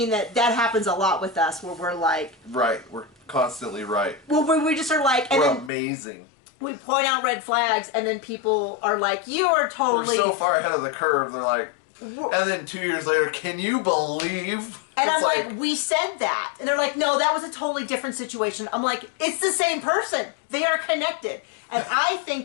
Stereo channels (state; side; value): drops out; right; at 5.7 s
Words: that happens a lot with us, where we're like... Right, we're constantly right. Well, we just are like... We're amazing. We point out red flags, and then people are like, you are totally... We're so far ahead of the curve, they're like... And then 2 years later, can you believe? And I'm like, we said that. And they're like, no, that was a totally different situation. I'm like, it's the same person. They are connected. And I